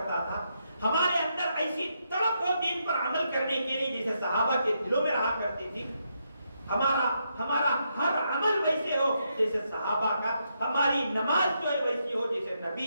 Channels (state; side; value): inverted; both; correlation -0.80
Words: تھا، ہمارے اندر ایسی تڑپ ہو دین پر عمل کرنے کے لیے جیسے صحابہ کے دلوں میں رہا کرتی تھی، ہمارا ہر عمل ویسے ہو جیسے صحابہ کا، ہماری نماز جو ہے ویسی ہو جیسے